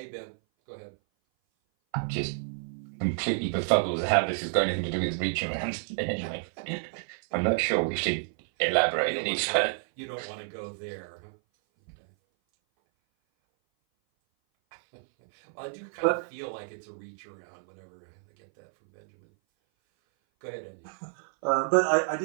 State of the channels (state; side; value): silent; left; 57 dB below the other